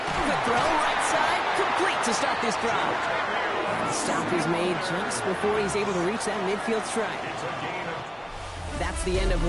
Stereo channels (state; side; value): identical; both; correlation 1.00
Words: Quick throw, right side, complete to start this drive. And the stop is made just before he's able to reach that midfield strike. That's the end of